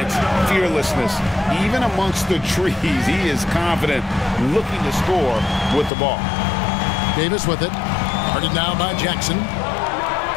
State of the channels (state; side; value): drops out; right; at 5.9 s